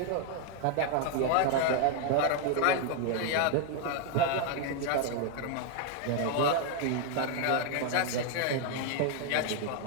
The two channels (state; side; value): different; both; correlation 0.00